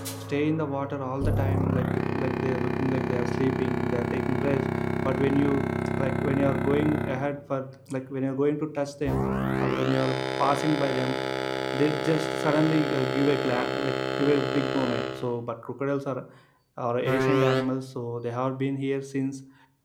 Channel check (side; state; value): both; identical; correlation 1.00